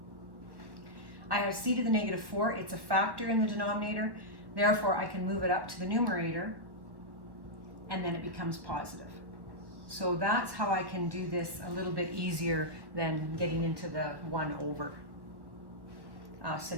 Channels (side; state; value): left; late; 1.2 ms